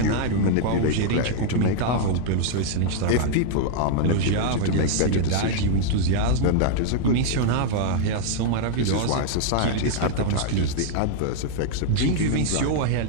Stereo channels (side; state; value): both; different; correlation 0.00